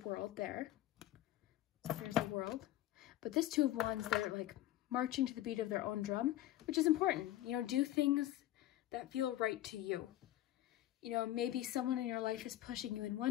there. So there's the world. But this 2 of Wands, they're like marching to the beat of their own drum, which is important. You know, do things that feel right to you. You know, maybe someone in your life is pushing you in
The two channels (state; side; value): quieter; right; 14.3 dB